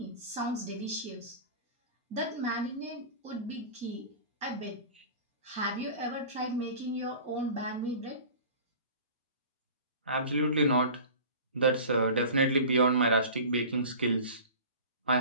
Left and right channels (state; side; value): inverted; both; correlation -0.39